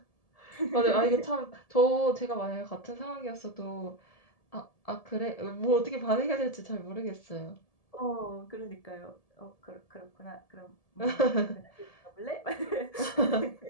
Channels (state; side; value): late; right; 1.7 ms